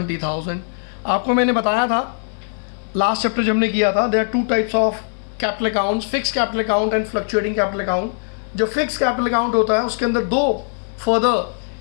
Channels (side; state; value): right; silent; digital silence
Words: आपको मैंने बताया था लास्ट चैप्टर जब हमने किया था, there are 2 types of capital accounts, fix capital account and fluctuating capital account. जो फिक्स कैपिटल अकाउंट होता है उसके अंदर 2 फर्दर